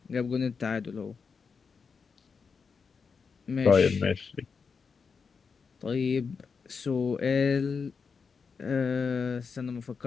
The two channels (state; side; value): quieter; right; 5.5 dB